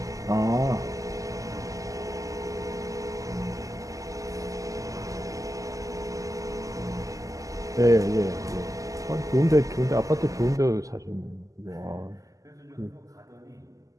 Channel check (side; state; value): left; late; 0.16 ms